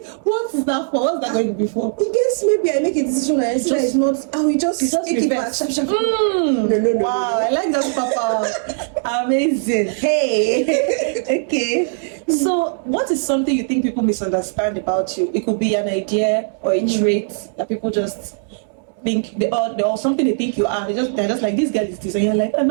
What is that for? What's that going to be for? In case maybe I make a decision and I see that it's not, I will just take it back. No. Wow, I like that, Papa. Amazing. Hey. Okay. So, what is something you think people misunderstand about you? It could be an idea or a trait that people just think or something they think you are. They're just like, this girl is this, and you're like,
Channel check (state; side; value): silent; left; 66 dB below the other